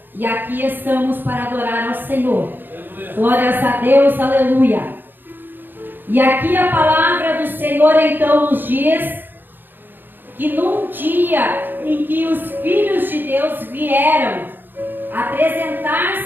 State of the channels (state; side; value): late; left; 0.094 ms